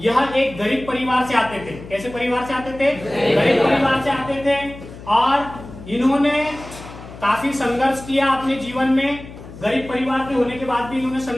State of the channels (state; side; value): noise; left; hum, 15 dB below the sound